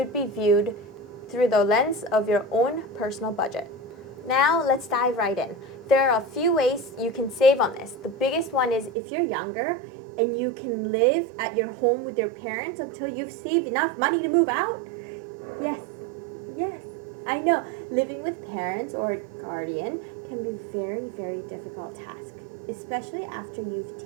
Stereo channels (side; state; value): left; drops out; at 8.9 s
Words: be viewed through the lens of your own personal budget. Now, let's dive right in. There are a few ways you can save on this. The biggest one is if you're younger and you can live at your home with your parents until you've saved enough money to move out. Yes, I know. Living with parents or a guardian can be a very difficult task, especially after you've